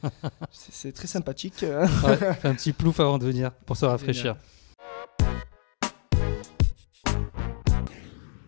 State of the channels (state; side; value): silent; right; 60 dB below the other